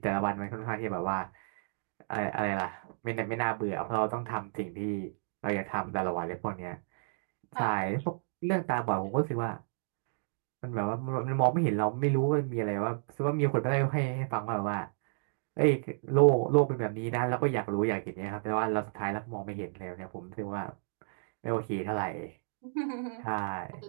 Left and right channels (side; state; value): left; silent; digital silence